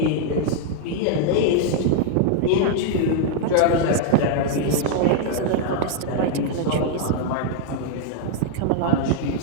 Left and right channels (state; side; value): different; both; correlation 0.00